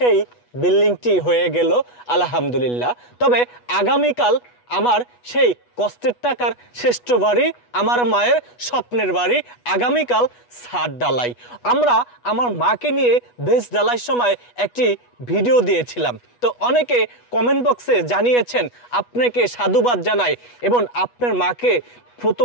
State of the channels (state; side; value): late; right; 8.2 ms